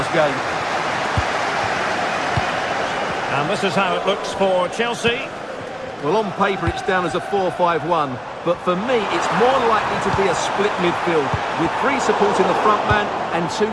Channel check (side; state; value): both; identical; correlation 1.00